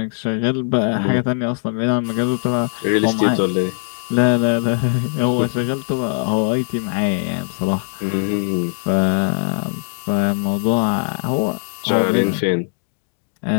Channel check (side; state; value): right; silent; digital silence